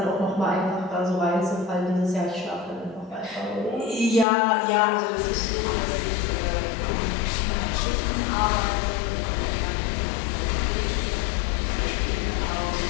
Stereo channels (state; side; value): drops out; right; at 4.2 s